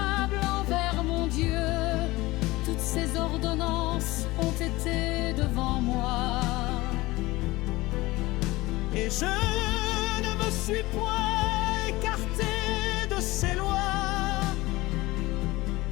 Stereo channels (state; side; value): quieter; right; 20.0 dB